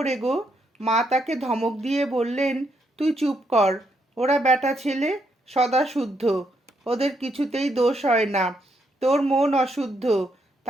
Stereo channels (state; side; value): normal; both; correlation 0.77